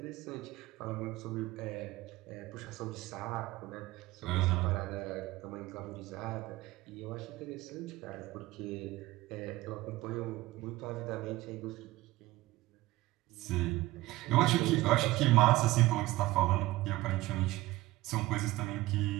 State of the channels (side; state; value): left; quieter; 18.3 dB